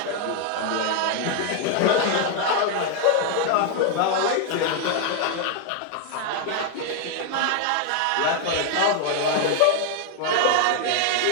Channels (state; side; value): different; both; correlation 0.00